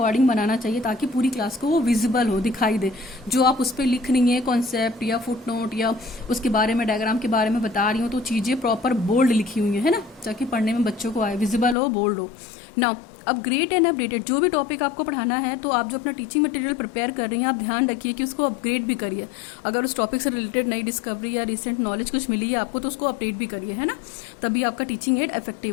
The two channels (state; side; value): drops out; right; at 11.8 s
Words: बनाना चाहिए, ताकि पूरी क्लास को वो विजिबल हो, दिखाई दे। जो आप उस पर लिख रही हैं कॉन्सेप्ट या फुट नोट या उसके बारे में, डायग्राम के बारे में बता रही हूँ, तो चीज़ें प्रॉपर बोल्ड लिखी हुई है ना, ताकि पढ़ने में बच्चों को आए, विजिबल हो, बोल्ड हो। नाउ अपग्रेड एंड अपडेटेड, जो भी टॉपिक आपको पढ़ाना है, तो आप जो अपना टीचिंग मटेरियल प्रिपेयर कर रही हैं, आप ध्यान रखिए कि उसको अपग्रेड भी करिए। अगर उस टॉपिक से रिलेटेड नई डिस्कवरी या रिसेंट नॉलेज कुछ मिली है आपको, तो उसको अपडेट भी करिए, है ना, तभी आपका टीचिंग एड